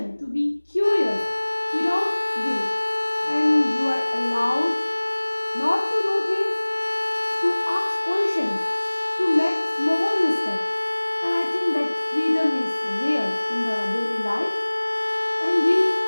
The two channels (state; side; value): inverted; both; correlation -1.00